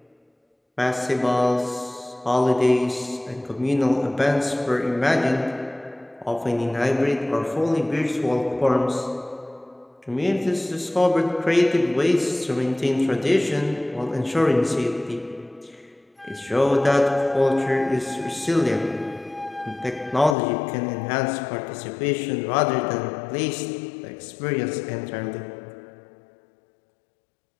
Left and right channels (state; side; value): drops out; right; at 20.4 s